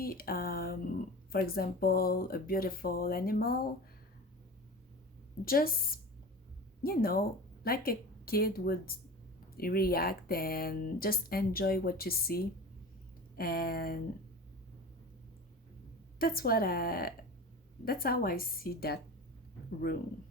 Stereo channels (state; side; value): normal; both; correlation 0.33